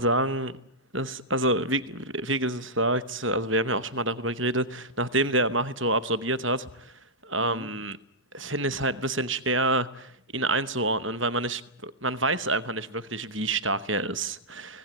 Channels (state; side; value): normal; both; correlation -0.11